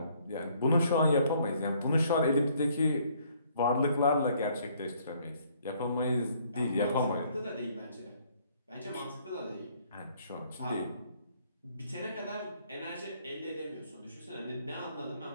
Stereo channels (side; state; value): both; inverted; correlation -0.64